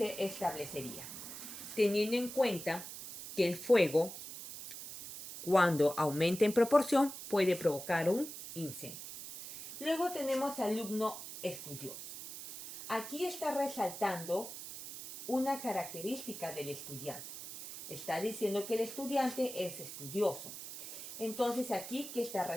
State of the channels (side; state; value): right; noise; hiss, 10 dB below the sound